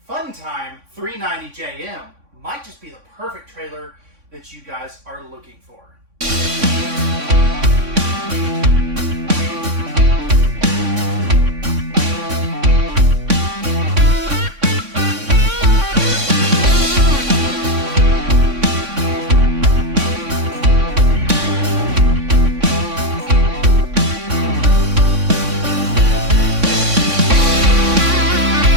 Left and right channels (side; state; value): left; late; 3.6 ms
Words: Time 390JM might just be the perfect trailer that you guys are looking for.